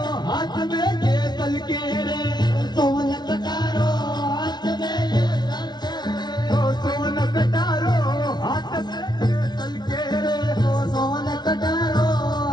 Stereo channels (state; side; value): late; right; 0.20 ms